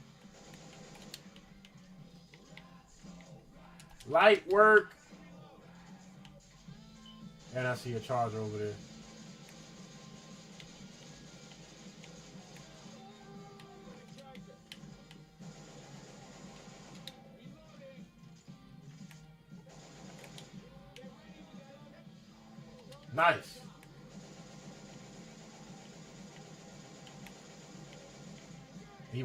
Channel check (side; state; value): both; identical; correlation 1.00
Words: Light work. And I see a charger over there. Nice. He